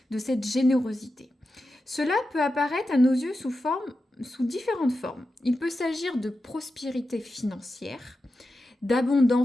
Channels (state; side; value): normal; both; correlation 0.91